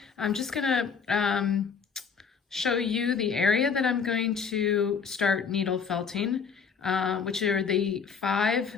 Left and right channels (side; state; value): right; quieter; 6.1 dB